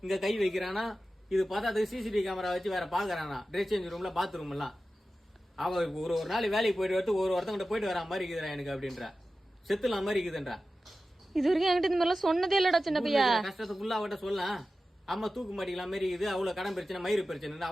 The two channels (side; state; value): both; normal; correlation 0.94